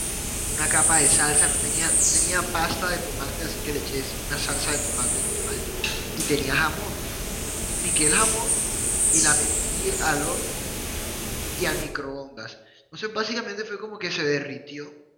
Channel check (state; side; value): identical; both; correlation 1.00